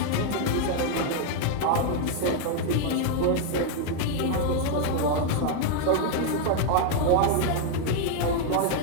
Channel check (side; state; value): both; different; correlation 0.01